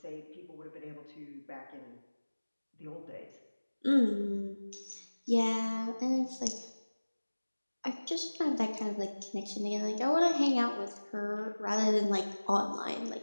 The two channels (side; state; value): both; inverted; correlation -1.00